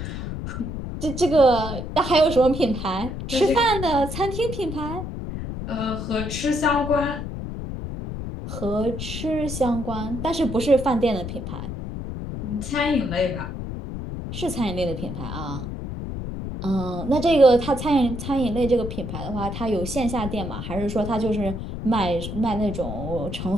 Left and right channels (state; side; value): noise; left; rumble, 6 dB below the sound